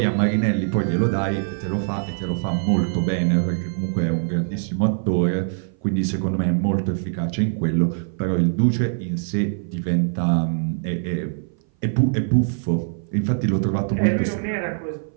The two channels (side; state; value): left; silent; 58 dB below the other